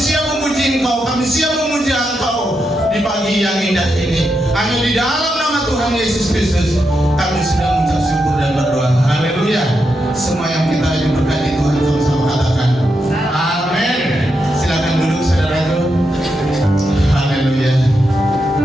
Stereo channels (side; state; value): both; normal; correlation 0.84